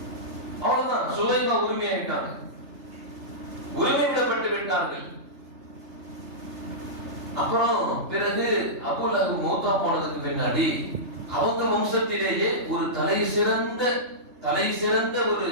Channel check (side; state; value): left; late; 3.3 ms